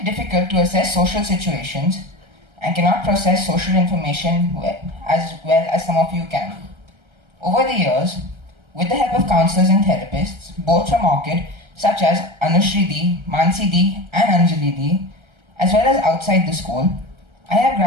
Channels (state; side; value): late; left; 1.3 ms